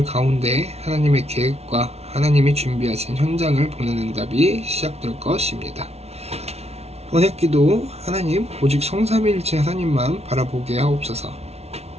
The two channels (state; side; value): late; left; 0.31 ms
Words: 가운데 하나님의 계획과 하나님이 준비하신 현장을 보는 응답이 시작될 것입니다. 언약기도 하나님 오직 성삼위일체 하나님만 바라보게 하옵소서.